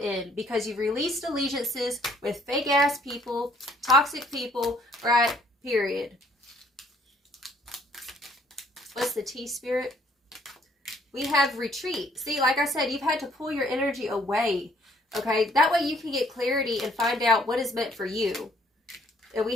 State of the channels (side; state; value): both; normal; correlation 0.63